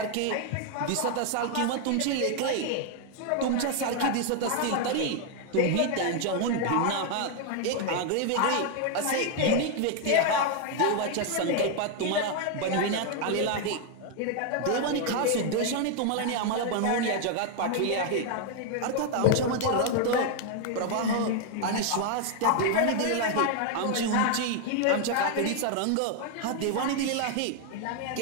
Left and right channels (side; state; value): both; different; correlation 0.00